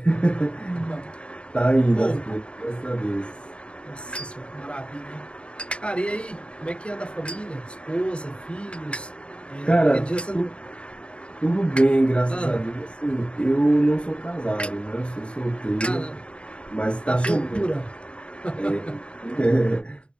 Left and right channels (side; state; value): right; late; 0.057 ms